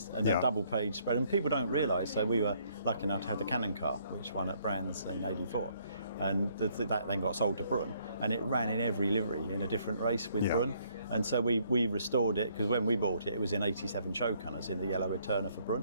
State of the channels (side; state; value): both; inverted; correlation -0.66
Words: and a double page spread. And people don't realise, so we were lucky enough to have the Cannon car, which won at Brands in '84. And that then got sold to Brun, and it ran in every livery in a different race with Brun. And so we restored it, because when we bought it, it was in '87 show colours in the yellow Eterna for